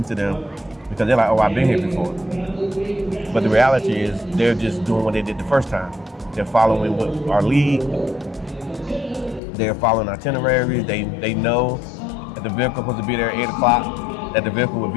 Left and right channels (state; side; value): drops out; right; at 9.4 s